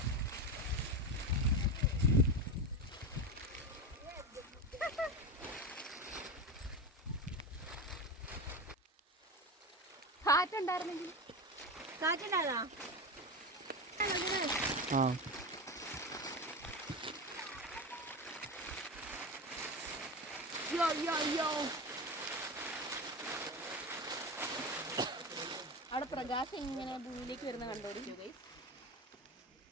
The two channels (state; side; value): normal; both; correlation 0.21